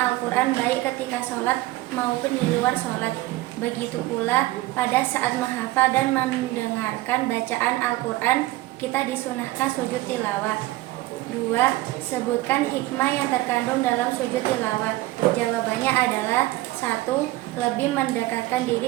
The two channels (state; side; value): quieter; left; 18.1 dB